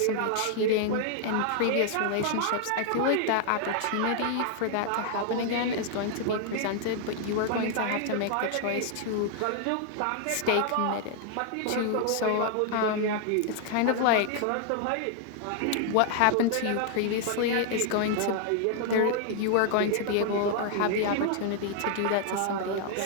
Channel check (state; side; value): different; both; correlation 0.00